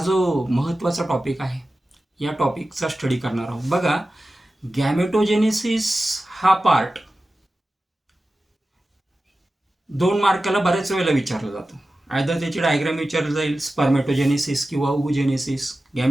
महत्त्वाचा टॉपिक आहे या टॉपिकचा स्टडी करणार आहोत. बघा, गॅमेटोजेनेसिस हा पार्ट 2 मार्काला बऱ्याच वेळेला विचारला जातो. आयदर त्याची डायग्राम विचारली जाईल, स्पर्मेटोजेनेसिस किंवा ओव्हुजेनेसिस.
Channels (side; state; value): both; normal; correlation 0.94